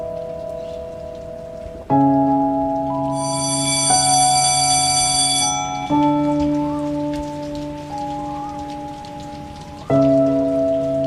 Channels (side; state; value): both; identical; correlation 1.00